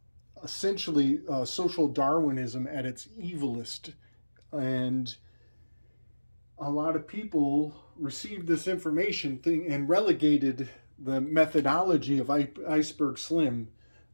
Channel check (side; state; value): both; inverted; correlation -1.00